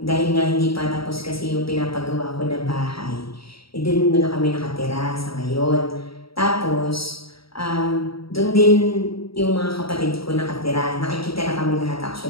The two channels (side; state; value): right; late; 0.75 ms